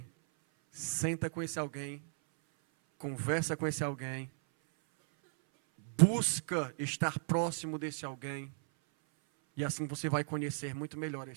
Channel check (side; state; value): left; silent; 54 dB below the other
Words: Senta com esse alguém, conversa com esse alguém, busca estar próximo desse alguém, e assim você vai conhecer muito melhor